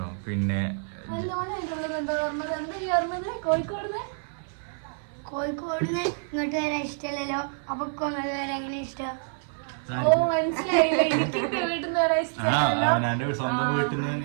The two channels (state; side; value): silent; left; 58 dB below the other